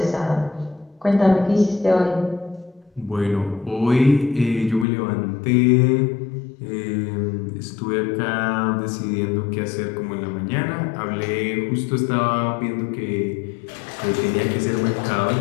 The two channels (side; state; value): right; drops out; at 4.9 s